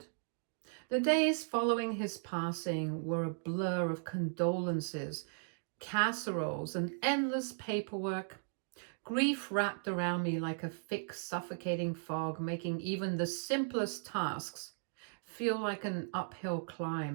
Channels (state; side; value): silent; left; digital silence